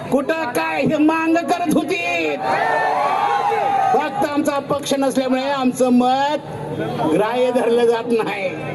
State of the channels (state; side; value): identical; both; correlation 1.00